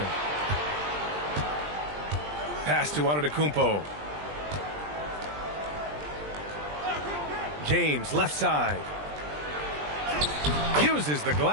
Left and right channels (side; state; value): left; late; 20 ms